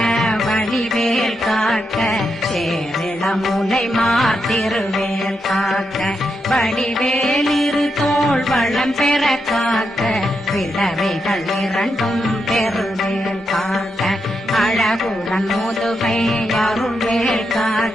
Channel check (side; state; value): both; normal; correlation 0.84